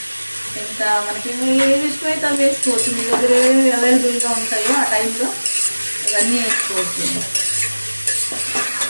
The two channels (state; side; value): inverted; both; correlation -1.00